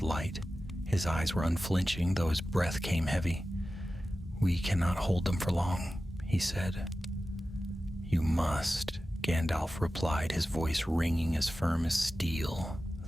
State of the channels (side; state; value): both; normal; correlation 0.94